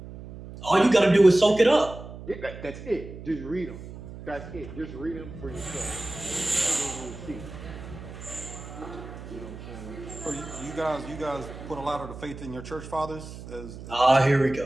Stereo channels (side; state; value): right; noise; hum, 13 dB below the sound